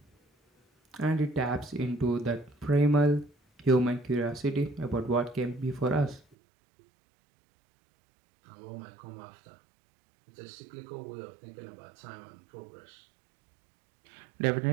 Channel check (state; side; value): drops out; left; at 6.4 s